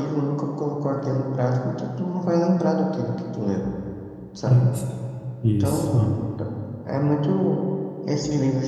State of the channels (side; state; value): both; identical; correlation 1.00